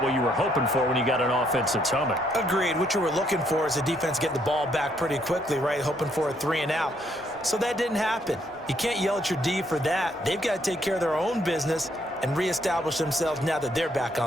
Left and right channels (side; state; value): both; normal; correlation 0.71